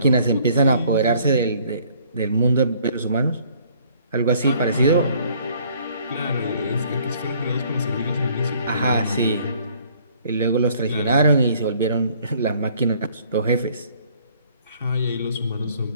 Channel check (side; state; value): both; inverted; correlation -0.60